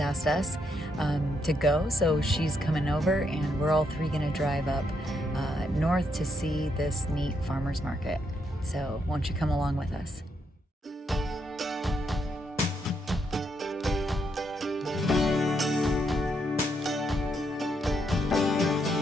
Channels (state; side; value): normal; both; correlation 0.77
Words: us to go, so she's coming over, and we're all three gonna drive up north to see this neat farmers market. So won't you come along with us?